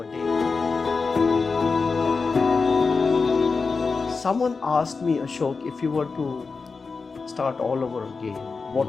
day. Someone asked me, Ashok, if you were to start all over again,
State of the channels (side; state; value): right; quieter; 4.6 dB